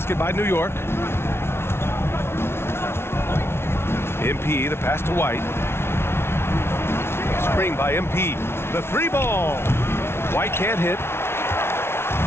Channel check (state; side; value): late; right; 0.12 ms